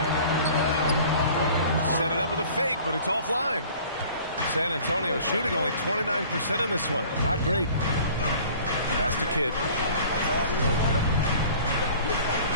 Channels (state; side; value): inverted; both; correlation -0.48